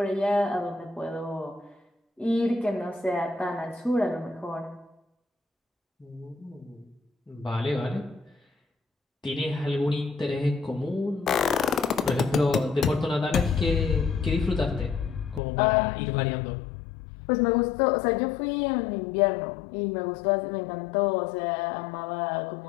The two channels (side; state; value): right; drops out; at 15.4 s